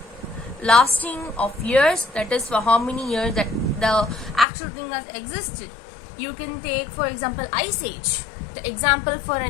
Lasting of years, that is for how many years that the actual thing has existed. You can take for example ice age. The example for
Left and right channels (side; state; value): right; drops out; at 4.5 s